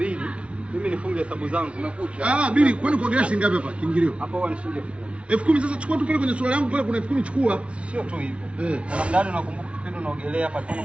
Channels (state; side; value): late; left; 0.061 ms